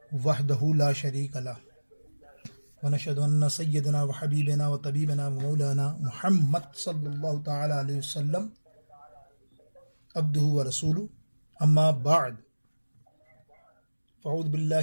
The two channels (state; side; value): inverted; both; correlation -1.00